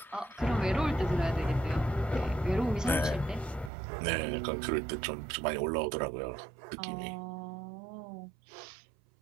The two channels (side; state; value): left; drops out; at 3.7 s